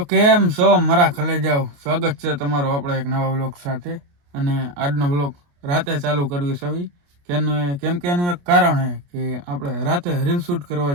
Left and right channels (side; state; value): left; late; 28 ms